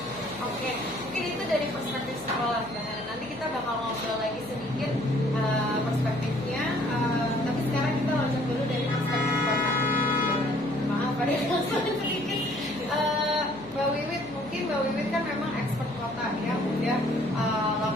Oke, mungkin itu dari perspektif sekolah. Nanti kita bakal ngobrol lagi sedikit perspektifnya, tapi sekarang kita loncat dulu dari perspektif kota. Maaf ada yang sedikit. Mbak Wiwit, mungkin Mbak Wiwit kan memang expert kota yang udah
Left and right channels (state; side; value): noise; left; hum, 19 dB below the sound